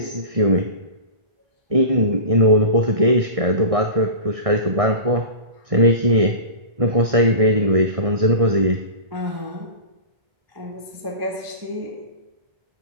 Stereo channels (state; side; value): late; left; 1.6 ms